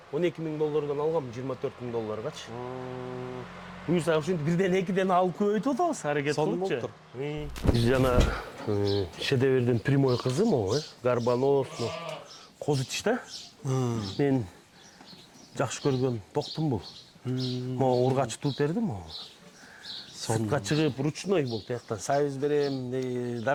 12 000 доллардан алгам, 24 000 долларгачы. Буюрса ушинтип бирден экиден алып көбөйтүп атабыз, аракет кылыпчы. Биз жана шедеврдин прямой кызы могу, гарбанос, козыч да. Мен жакшы көргөн токтум бул. Могу ургач туруп бердим могу. Сыртка чыгып ручной бул тияктан сайыз берем,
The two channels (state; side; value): identical; both; correlation 1.00